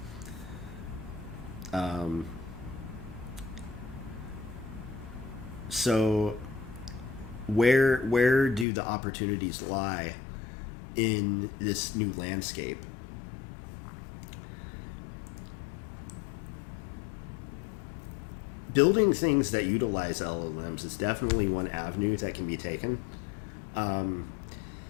So where do the opportunities lie in this new landscape? Building things that utilize LLMs is definitely one avenue that can be taken. I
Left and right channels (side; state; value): right; drops out; at 8.7 s